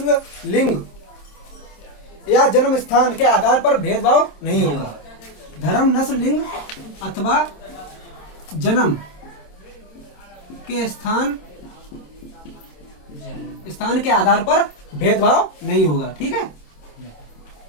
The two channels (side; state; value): right; late; 26 ms